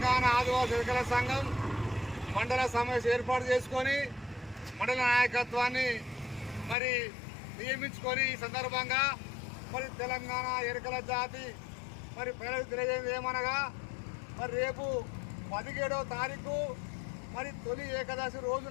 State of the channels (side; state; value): right; drops out; at 6.8 s